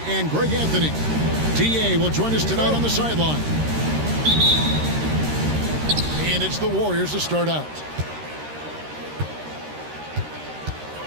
and Greg Anthony. DA will join us tonight on the sideline. And it's the Warriors to start out.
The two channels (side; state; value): left; late; 13 ms